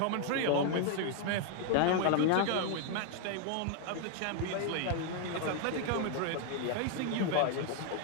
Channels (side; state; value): both; different; correlation 0.00